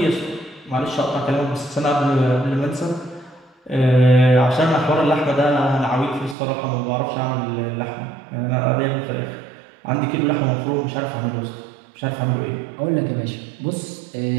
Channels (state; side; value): drops out; left; at 6.4 s